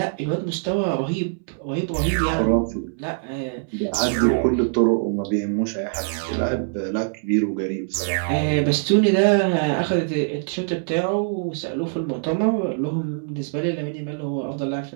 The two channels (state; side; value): silent; left; 63 dB below the other